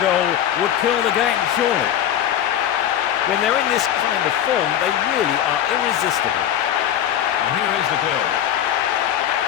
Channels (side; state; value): right; quieter; 10.6 dB